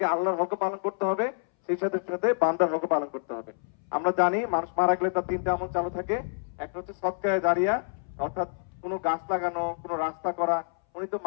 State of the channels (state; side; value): silent; right; 59 dB below the other